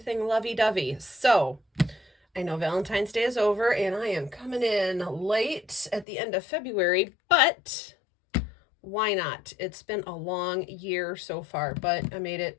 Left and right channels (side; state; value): right; drops out; at 6.1 s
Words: lovey-dovey. So I know Valentine's Day is over and I am coming in late at the end of February, but why not? It's been a long year so far, but I made it